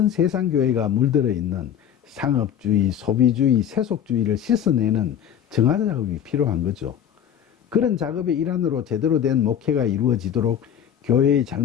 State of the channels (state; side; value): quieter; right; 9.4 dB